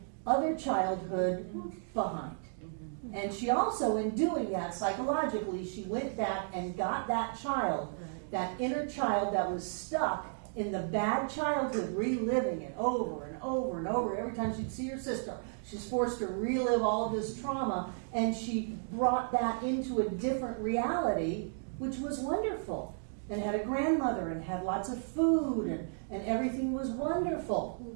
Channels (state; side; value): silent; left; digital silence